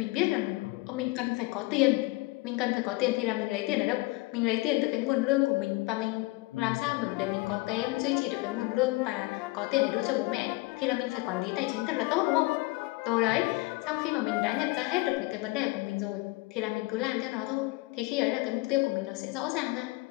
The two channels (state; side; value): quieter; right; 22.6 dB